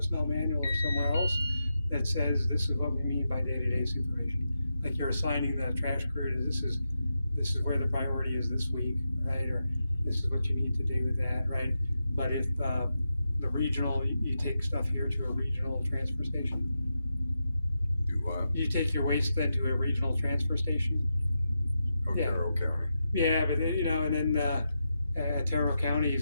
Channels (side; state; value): both; inverted; correlation -0.87